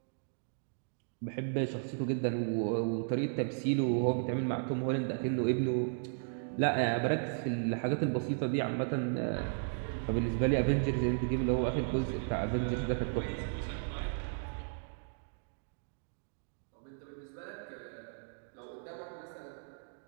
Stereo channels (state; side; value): silent; left; digital silence